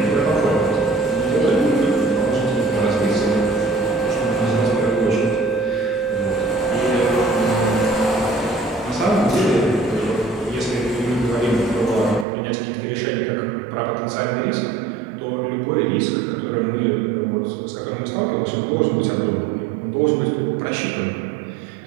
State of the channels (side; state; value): left; drops out; at 12.2 s